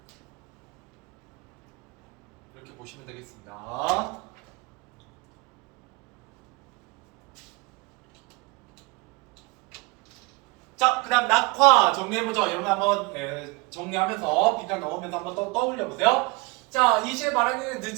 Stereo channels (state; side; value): quieter; left; 25.7 dB